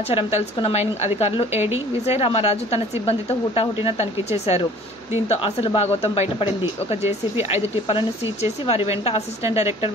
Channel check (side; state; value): both; normal; correlation 0.50